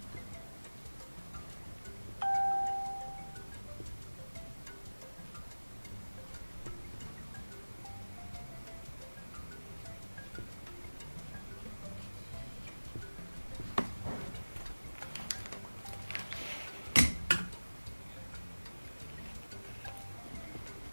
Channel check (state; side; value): inverted; both; correlation -1.00